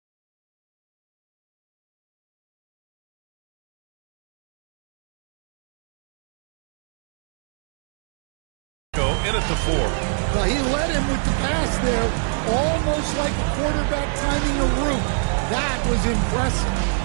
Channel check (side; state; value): left; silent; digital silence